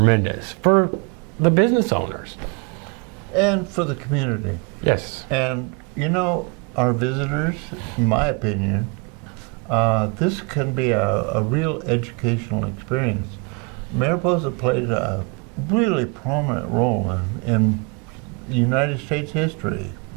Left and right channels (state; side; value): quieter; left; 32.7 dB